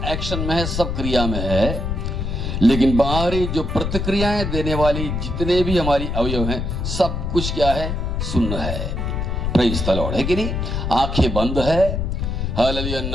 एक्शन में है, सब क्रिया में है। लेकिन बाहरी जो प्रतिक्रियाएं देने वाली जितने भी हमारी अवयव हैं सब कुछ क्या है? सुन्न है। Praise the Lord. है कि नहीं? आंखें बंद है, हालेलुया,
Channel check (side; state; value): left; noise; rumble, 2 dB below the sound